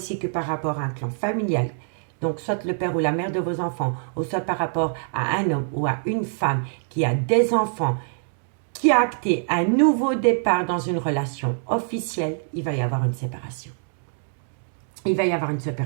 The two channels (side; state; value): left; silent; digital silence